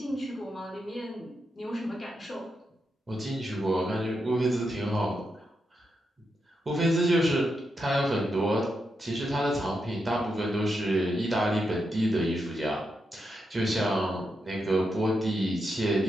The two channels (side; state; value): both; normal; correlation 0.85